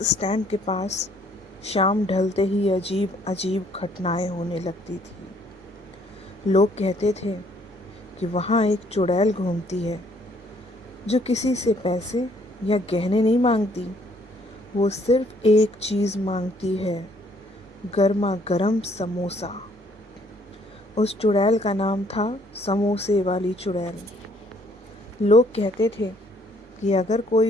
स्टैंड के पास शाम ढलते ही अजीब अजीब घटनाएं होने लगती थी। लोग कहते थे कि वहाँ एक चुड़ैल घूमती है जो किसी से पैसे या गहने नहीं मांगती। वो सिर्फ एक चीज़ मांगती है, गर्मा गर्म समोसा। उस चुड़ैल का नाम था समोसे वाली चुड़ैल। लोग कहते थे कि अगर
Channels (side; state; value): both; normal; correlation 0.64